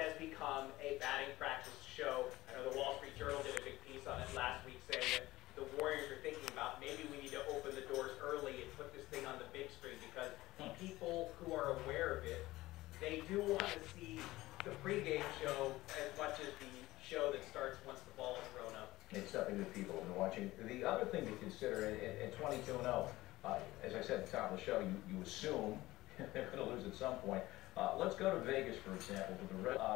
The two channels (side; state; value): right; quieter; 18.0 dB